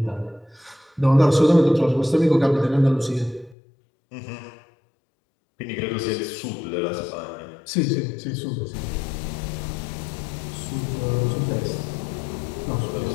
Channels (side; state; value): right; drops out; at 3.6 s